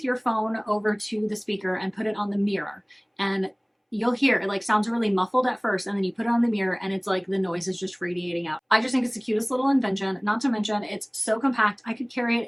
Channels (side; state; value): both; identical; correlation 1.00